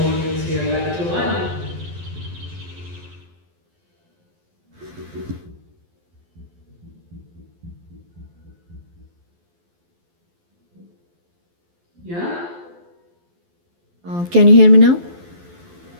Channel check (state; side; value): late; left; 12 ms